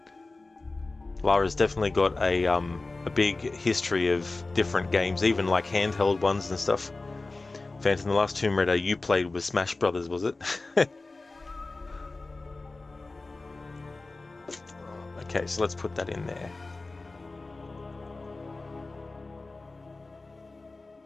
Lara's definitely got a big history of different games, even like handheld ones and stuff. Phantom, the last Tomb Raider you played was Smash Brothers, was it? Okay, so let's put that in there.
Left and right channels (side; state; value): right; quieter; 3.4 dB